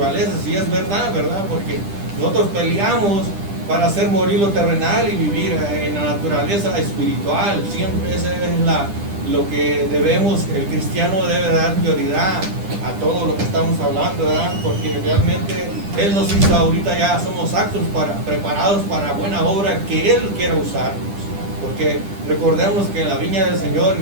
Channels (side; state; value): left; late; 10 ms